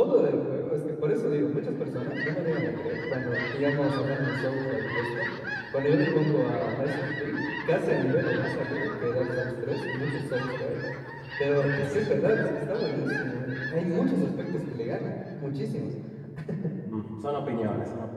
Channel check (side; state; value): both; identical; correlation 1.00